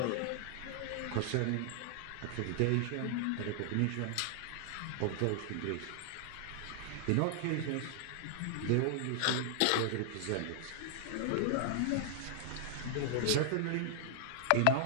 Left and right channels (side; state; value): both; different; correlation -0.01